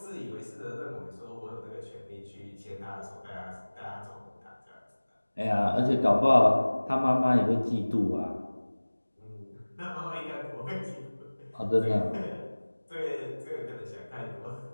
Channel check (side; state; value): both; inverted; correlation -1.00